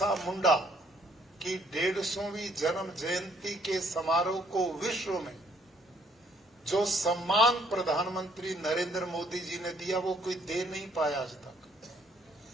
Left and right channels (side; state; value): both; normal; correlation 0.66